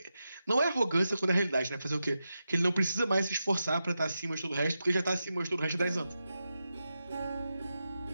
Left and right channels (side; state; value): both; inverted; correlation -0.89